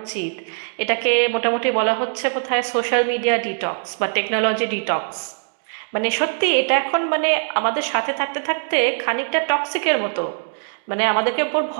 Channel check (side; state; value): left; silent; digital silence